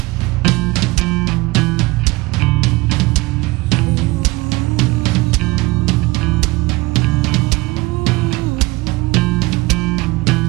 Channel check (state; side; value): quieter; left; 22.2 dB